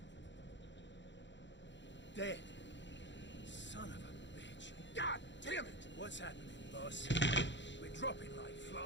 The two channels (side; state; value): right; late; 0.53 ms